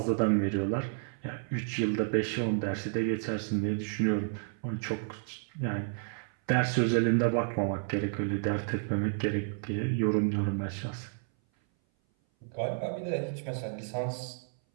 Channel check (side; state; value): left; silent; 57 dB below the other